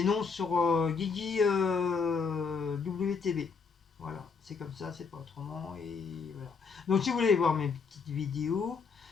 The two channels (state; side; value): quieter; right; 5.3 dB